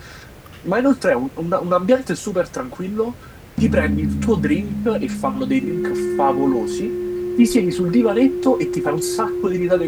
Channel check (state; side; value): identical; both; correlation 1.00